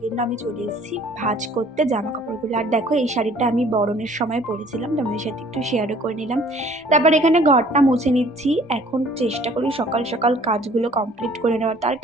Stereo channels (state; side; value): normal; both; correlation 0.55